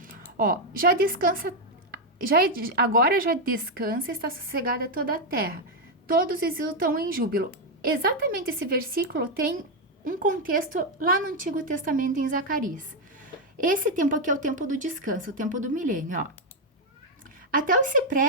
Ó, agora já descansa, está sossegada toda a terra. Todos exultam em júbilo. Exatamente esse versículo tem um contexto lá no Antigo Testamento em Zacarias. Esse tempo aqui é o tempo do descanso, o tempo do milênio, ó. Até os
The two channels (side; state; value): both; normal; correlation 0.03